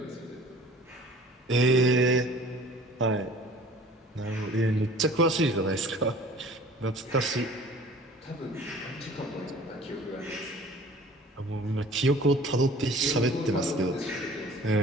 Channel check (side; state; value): both; normal; correlation 0.48